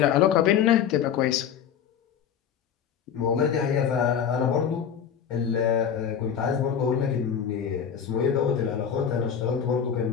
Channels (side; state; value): right; quieter; 8.2 dB